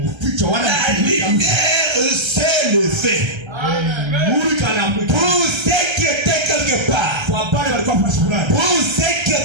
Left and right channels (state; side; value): late; left; 1.3 ms